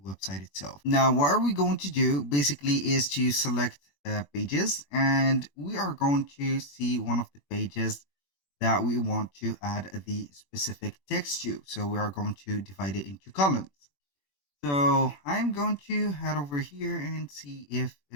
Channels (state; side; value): late; right; 21 ms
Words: website itself. Now, what are we going to do basically is to select pages, and we are going to see one of the pages that we want to add the specific text to. So we are going to divide it into columns. So I'm going to head over here and see if